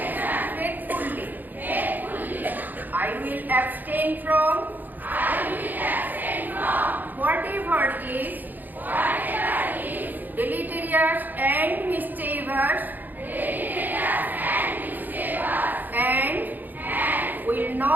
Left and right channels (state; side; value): late; left; 0.086 ms